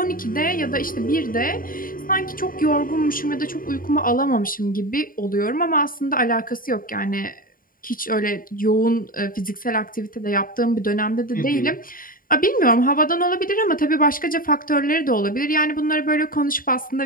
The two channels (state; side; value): late; right; 0.41 ms